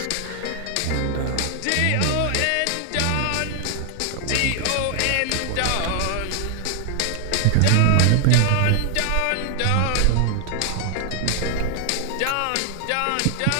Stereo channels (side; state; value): both; different; correlation 0.00